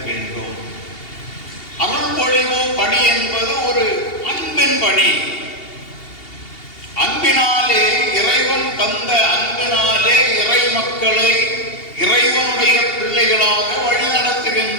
வேண்டும். அருள்பொழிவு பணி என்பது ஒரு அன்பின் பணி. அன்பினாலே இறைவன் தந்த அன்பினாலே இறை மக்களை இறைவனுடைய பிள்ளைகளாக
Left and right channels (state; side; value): late; right; 2.8 ms